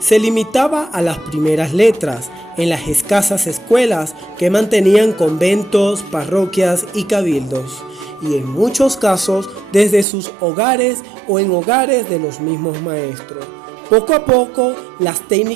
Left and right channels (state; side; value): drops out; left; at 10.1 s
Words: limitaba a las primeras letras en las escasas escuelas que mantenían conventos, parroquias y cabildos, y en muchos casos desde sus hogares o en hogares de los mismos maestros. Poco a poco, las